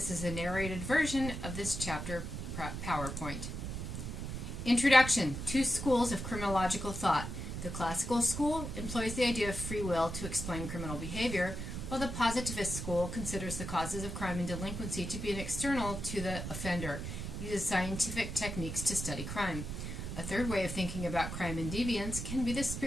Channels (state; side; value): noise; right; rumble, 5 dB below the sound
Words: is a narrated version of this chapter PowerPoint. Introduction. Two schools of criminological thought. The classical school employs the idea of free will to explain criminal behavior, while the positivist school considers the causes of crime and delinquency to be an external to the offender, uses scientific techniques to study crime. A third way of thinking about crime and deviance can be the